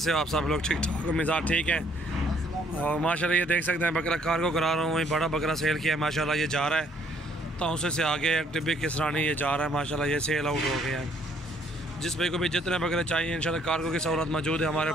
हो आप सब लोग? ठीक ठाक, मिजाज ठीक है। और माशाल्लाह ये देख सकते हैं बकरा कार्गो करा रहा हूँ। वही बड़ा बकरा सेल किया है माशाल्लाह, ये जा रहा है तौसे से आगे टिब्बी किसरानी ये जा रहा है माशाल्लाह, ये सेल आउट हो गया है। जिस भाई को भी जितने बकरे चाहिए इंशाल्लाह कार्गो की सहूलत मौजूद है हमारे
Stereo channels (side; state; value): both; normal; correlation 0.65